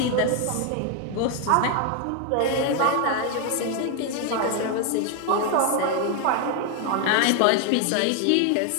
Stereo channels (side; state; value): both; different; correlation 0.01